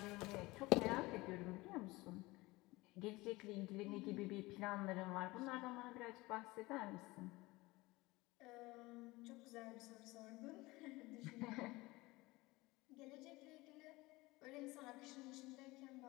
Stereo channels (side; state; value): right; quieter; 21.3 dB